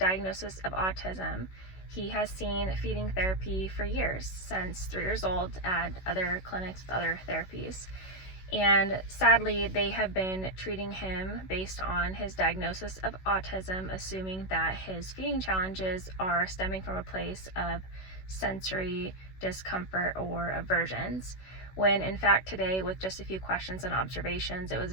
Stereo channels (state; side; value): late; right; 16 ms